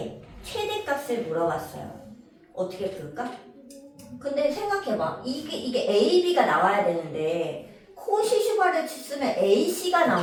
최대값을 물어봤어요. 어떻게 풀까? 근데 생각해봐. 이게 AB가 나와야 되는데 코시 슈바르츠 쓰면 AC가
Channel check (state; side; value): identical; both; correlation 1.00